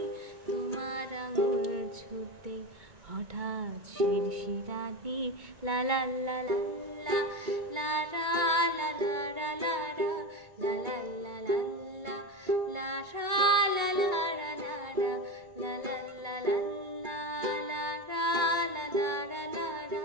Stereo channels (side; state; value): left; late; 2.2 ms